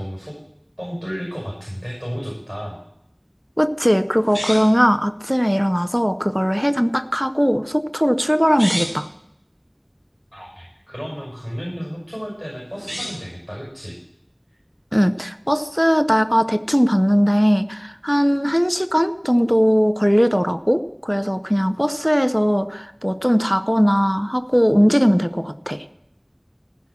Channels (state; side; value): identical; both; correlation 1.00